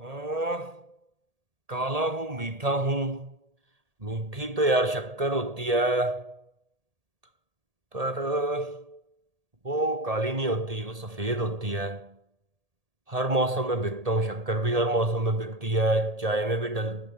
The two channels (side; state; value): left; late; 1.8 ms